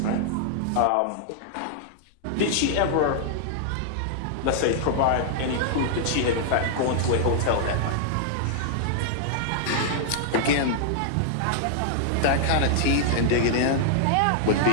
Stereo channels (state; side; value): different; both; correlation -0.01